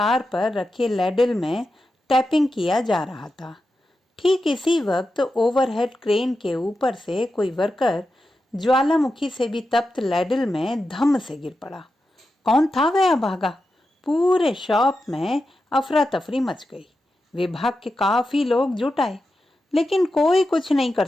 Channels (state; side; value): normal; both; correlation 0.90